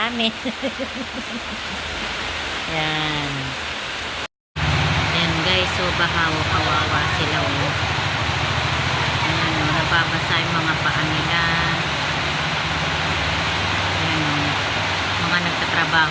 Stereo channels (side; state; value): both; identical; correlation 1.00